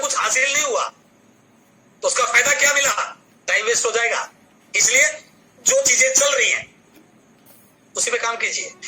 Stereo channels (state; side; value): identical; both; correlation 1.00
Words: हासिल नहीं हुआ, तो उसका फायदा क्या मिला, टाइम वेस्ट हो जाएगा। इसलिए जो चीजें चल रही हैं उसी पे काम कीजिए।